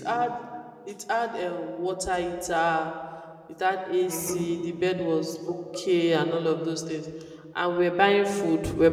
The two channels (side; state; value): both; identical; correlation 1.00